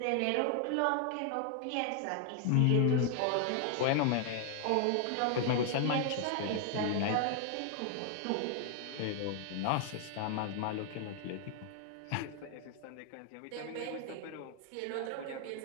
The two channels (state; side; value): different; both; correlation 0.00